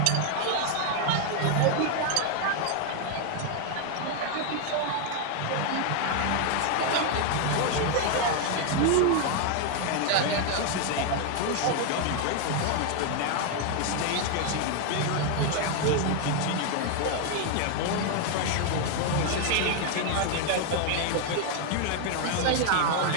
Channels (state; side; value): different; both; correlation 0.00